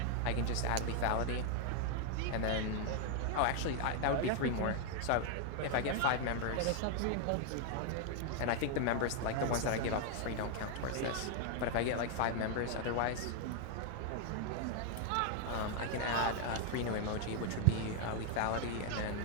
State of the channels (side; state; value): both; different; correlation 0.00